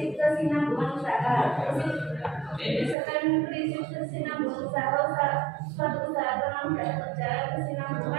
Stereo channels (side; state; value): left; drops out; at 3.0 s